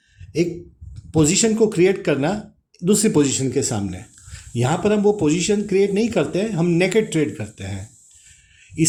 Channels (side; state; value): both; identical; correlation 1.00